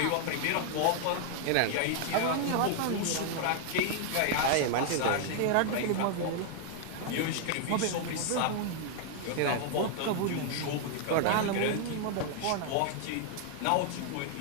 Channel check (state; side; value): different; both; correlation 0.00